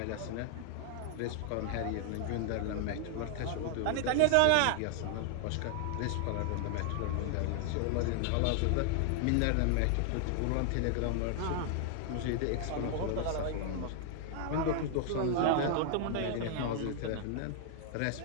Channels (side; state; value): both; different; correlation 0.00